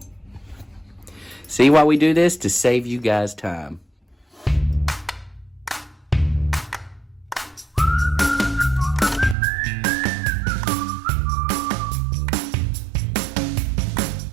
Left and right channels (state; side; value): drops out; left; at 9.3 s